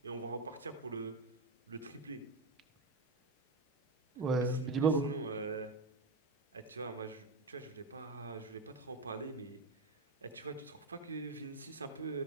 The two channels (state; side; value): quieter; left; 3.1 dB